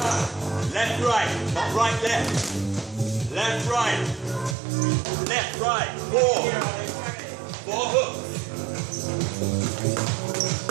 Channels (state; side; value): drops out; left; at 4.5 s